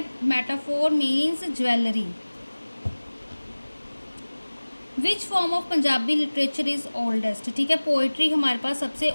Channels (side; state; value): both; inverted; correlation -1.00